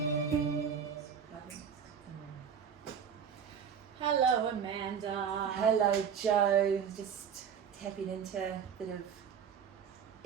Hello, Amanda. Hello, Jo. Just tapping into a bit of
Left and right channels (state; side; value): quieter; left; 7.4 dB